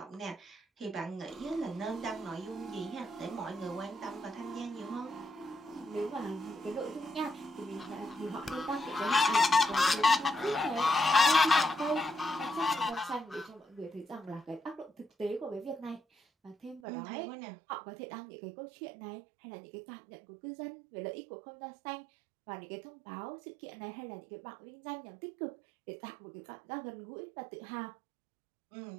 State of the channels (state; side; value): drops out; left; at 16.8 s